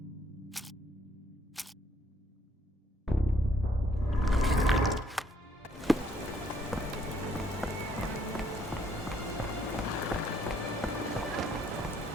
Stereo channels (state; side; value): normal; both; correlation 0.67